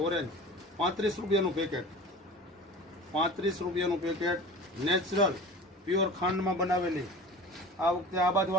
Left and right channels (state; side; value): normal; both; correlation 0.37